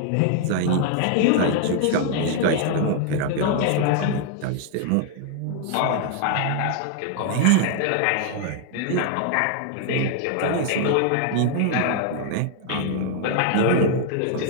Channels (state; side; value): different; both; correlation 0.00